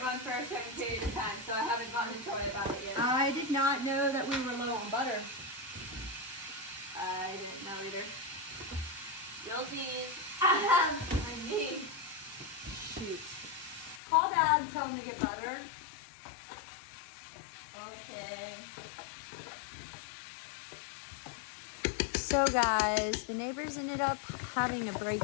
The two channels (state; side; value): drops out; right; at 14.0 s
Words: run for a certain period of time. So I haven't gone to Troy about it yet. I did not know that we were low on butter. I didn't know either. Guilty. I mean. Shoot. Call Dad and tell him to get butter. Okay. So guys, the neighbors ended up having a